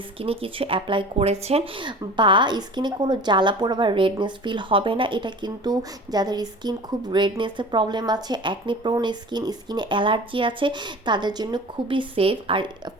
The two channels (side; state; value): both; normal; correlation 0.40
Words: স্কিনে কিছু অ্যাপ্লাই করেছেন, বা স্কিনে কোনো জ্বালা পোড়া বা রেডনেস ফিল হবে না। এটা কিন্তু যাদের স্কিন খুব রেডনেসের প্রবলেম আছে, অ্যাকনি প্রোন স্কিন, স্কিনে অ্যালার্জি আছে, তাদের জন্য খুবই সেফ। আর